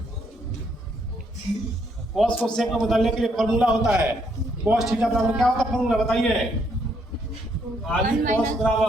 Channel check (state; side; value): normal; both; correlation 0.72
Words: कोस को सेक में बदलने के लिए फॉर्मूला होता है कोस थीटा बराबर क्या होता है फॉर्मूला बताइए? खाली कोस